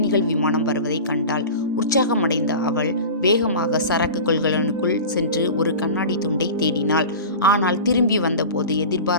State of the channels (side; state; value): both; inverted; correlation -0.34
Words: விமானம் வருவதை கண்டாள். உற்சாகமடைந்த அவள் வேகமாக சரக்கு கொள்கலனுக்குள் சென்று ஒரு கண்ணாடி துண்டை தேடினாள். ஆனால் திரும்பி வந்தபோது